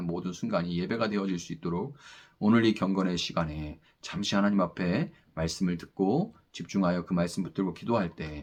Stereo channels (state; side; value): identical; both; correlation 1.00